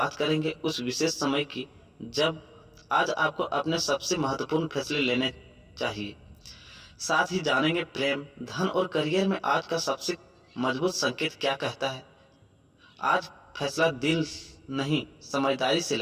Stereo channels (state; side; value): identical; both; correlation 1.00